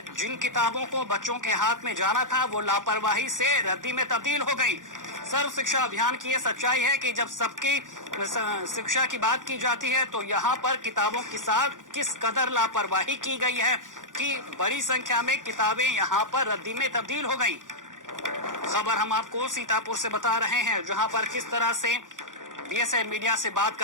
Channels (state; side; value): late; left; 0.88 ms